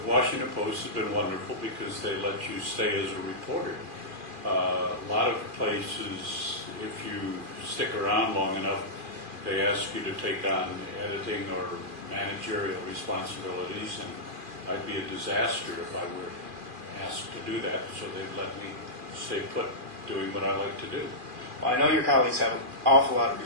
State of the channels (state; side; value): late; left; 2.4 ms